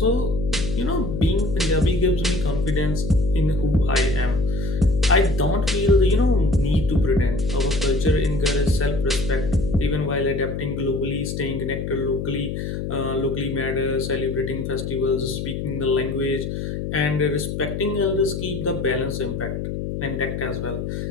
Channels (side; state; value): left; noise; hum, 4 dB below the sound